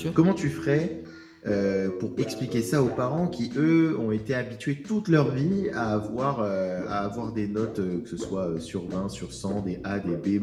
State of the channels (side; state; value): both; identical; correlation 1.00